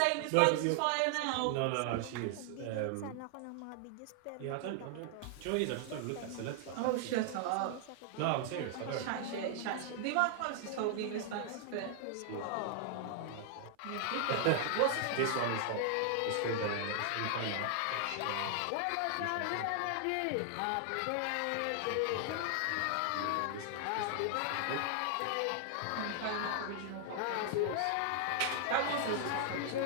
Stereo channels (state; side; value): different; both; correlation 0.00